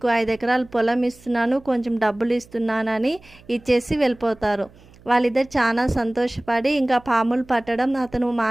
5 ఎకరాల పొలం ఇస్తున్నాను, కొంచెం డబ్బులు ఇస్తున్నానని ఇచ్చేసి వెళ్ళిపోతారు. వాళ్ళిద్దరు చాలా సంతోషపడి ఇంకా పాములు పట్టడం అతను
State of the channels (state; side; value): noise; right; hum, 25 dB below the sound